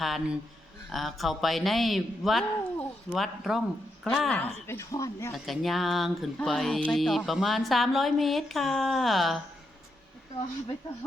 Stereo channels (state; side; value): normal; both; correlation 0.82